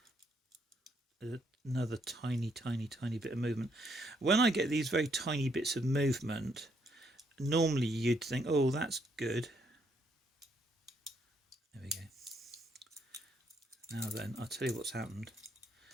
Another tiny bit of movement. When I get these very tiny bits of movement, normally you'd think, oh, that's good. There we go. Now then, I'll tell you what's happened.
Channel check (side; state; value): both; normal; correlation 0.73